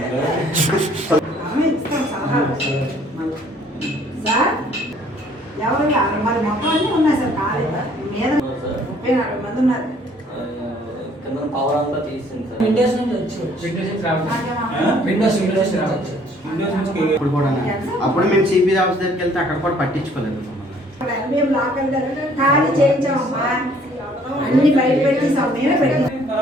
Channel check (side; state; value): both; normal; correlation 0.59